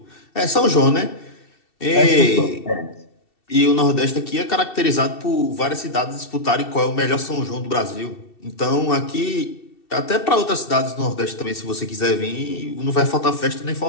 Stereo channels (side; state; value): right; late; 2.7 ms